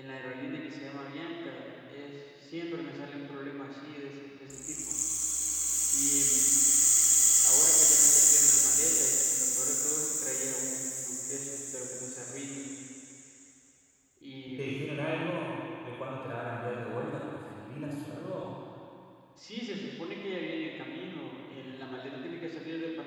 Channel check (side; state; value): both; identical; correlation 1.00